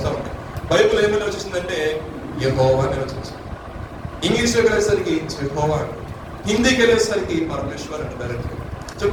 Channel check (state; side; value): identical; both; correlation 1.00